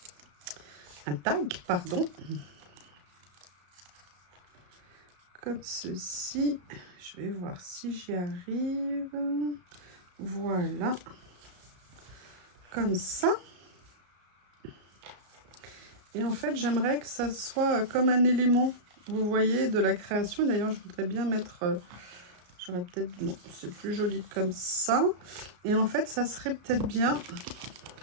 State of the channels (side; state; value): left; late; 34 ms